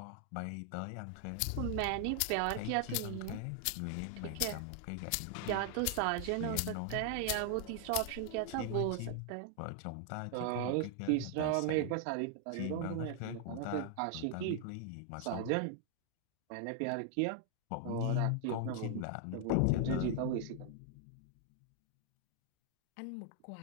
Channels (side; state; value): both; different; correlation 0.00